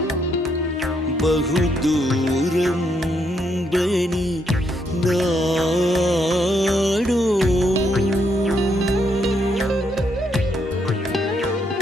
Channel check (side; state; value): both; normal; correlation 0.75